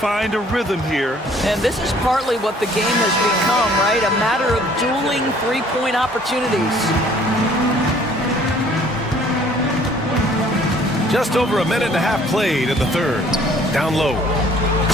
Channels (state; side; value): normal; both; correlation 0.57